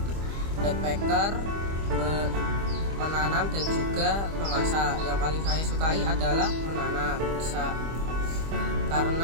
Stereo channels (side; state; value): left; late; 25 ms